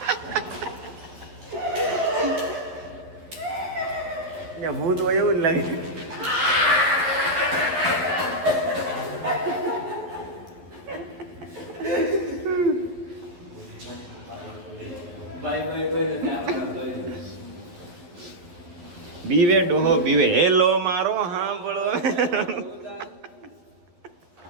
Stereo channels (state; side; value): late; left; 12 ms